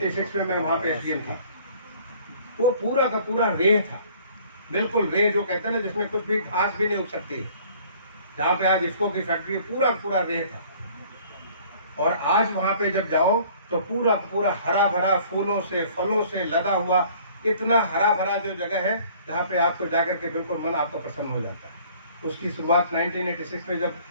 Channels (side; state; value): both; inverted; correlation -0.54